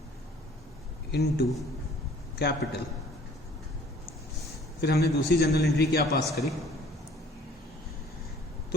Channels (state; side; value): normal; both; correlation 0.54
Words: into capital. फिर हमने दूसरी जनरल एंट्री क्या पास करी।